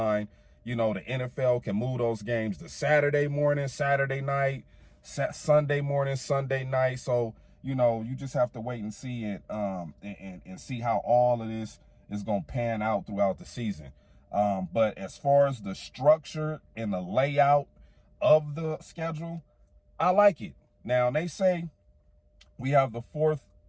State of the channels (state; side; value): identical; both; correlation 1.00